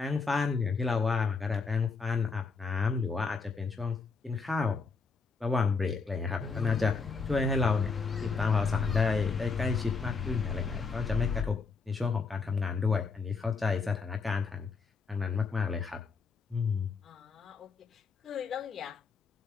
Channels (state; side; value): quieter; right; 4.7 dB